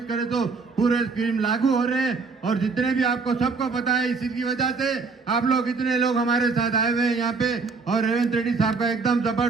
करे तो पूरे स्कीम लागू हो रहे हैं। और जितने भी आपको सबको पता है, इसी की वजह से आप लोग इतने लोग हमारे साथ आए हुए हैं यहाँ पे और रेवंत रेड्डी साहब का एकदम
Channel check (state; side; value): quieter; left; 4.5 dB